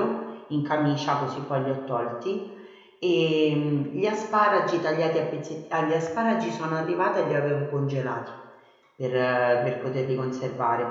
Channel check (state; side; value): identical; both; correlation 1.00